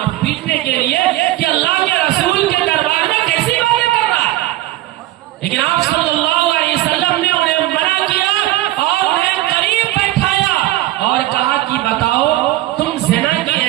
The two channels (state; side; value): quieter; left; 16.1 dB